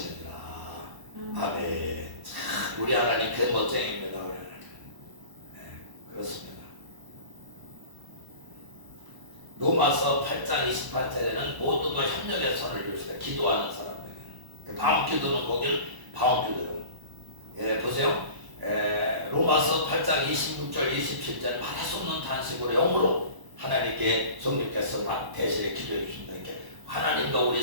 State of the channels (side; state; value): left; late; 1.0 ms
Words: 아멘. 참 우리 하나님 그 멋쟁입니다. 우리 하나님. 네, 그렇습니다. 로마서 8장 28절에는 모든 걸 협력의 선을 주시다. 기도하는 사람에게는. 방언기도는 거기는 방언기도예요. 예, 보세요. 로마서 8장 26절 27절 말할 수 없는 탄식으로 영으로 하나님께 성령께서 막 대신에 기도해 주신다. 이렇게 하나님과 우리